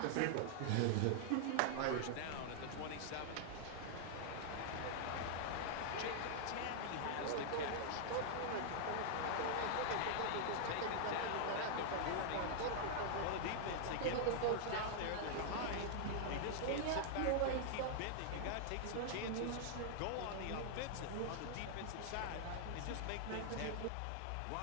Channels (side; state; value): both; different; correlation -0.01